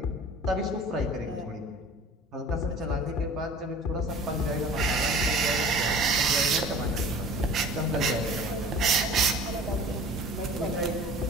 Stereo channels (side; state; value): both; normal; correlation 0.44